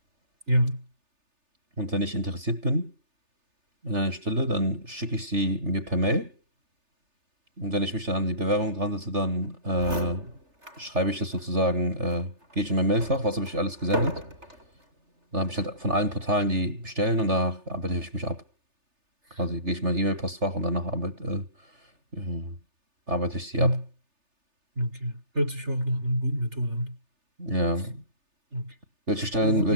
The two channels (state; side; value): late; left; 3.3 ms